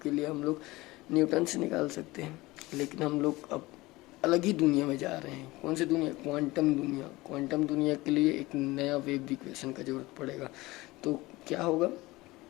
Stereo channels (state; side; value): quieter; right; 20.4 dB